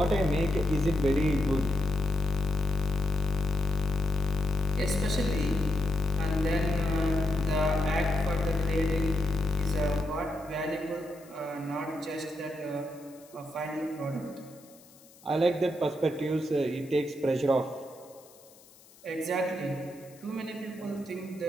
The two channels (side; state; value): left; noise; hiss, 25 dB below the sound